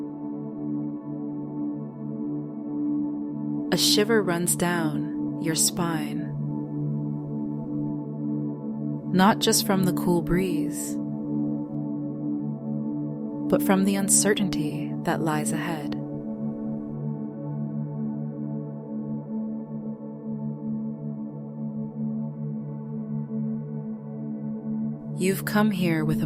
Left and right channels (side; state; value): both; identical; correlation 1.00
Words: A shiver runs down your spine, not just from the cool breeze, but from the uncertainty that lies ahead. You've come here with